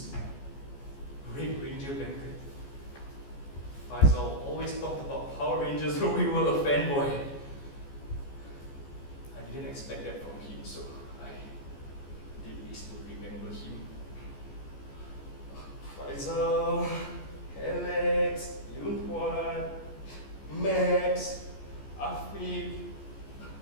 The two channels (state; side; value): late; right; 14 ms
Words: Red Ranger blanket. Faisal always talked about Power Rangers when we were a fanboy. I didn't expect that from him, so I did this to remember him. Faisal, Alex, Yunhuan, Max, Afiq,